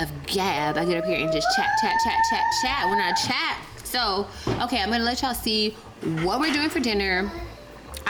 gab. I get up here and just chat when I chat. So, okay, I'm gonna let y'all see what we're doing for dinner.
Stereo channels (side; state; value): both; identical; correlation 1.00